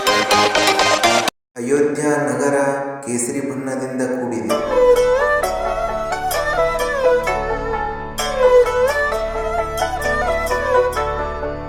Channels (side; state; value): both; identical; correlation 1.00